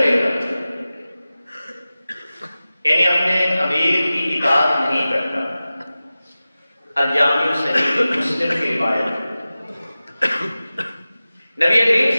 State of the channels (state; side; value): inverted; both; correlation -0.96